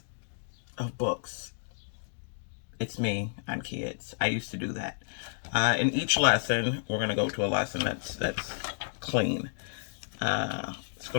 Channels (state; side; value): silent; right; digital silence